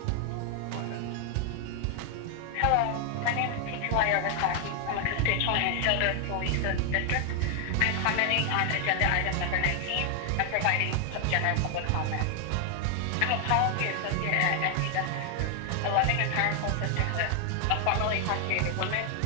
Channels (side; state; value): both; different; correlation 0.00